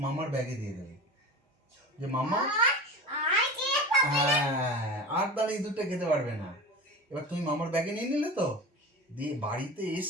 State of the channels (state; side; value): normal; both; correlation 0.32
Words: মামার ব্যাগে দিয়ে দেবে যে মামা, হ্যাঁ, আর তাহলে ইঁদুরটা খেতে পারবে না। এবার তুমি মামার ব্যাগে নিয়ে নিলে তো, দিয়ে বাড়িতে